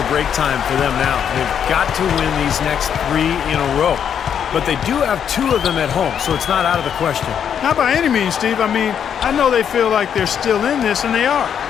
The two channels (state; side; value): quieter; right; 8.3 dB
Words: break time for them now. They've got to win these next 3 in a row. But they do have 2 of them at home, so it's not out of the question. Not by any means, Steve. I mean, I know they feel like they're still in this, and they are.